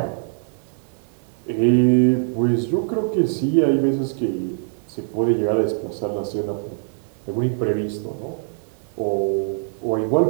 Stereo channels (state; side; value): silent; left; digital silence